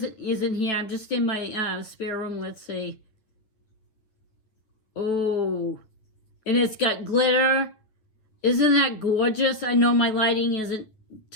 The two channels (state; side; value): late; right; 9.5 ms